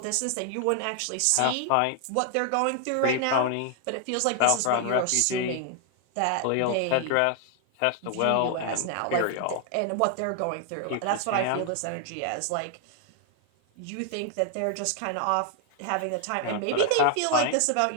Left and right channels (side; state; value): both; different; correlation 0.00